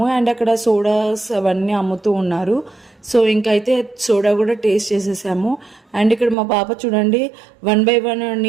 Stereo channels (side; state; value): left; drops out; at 6.4 s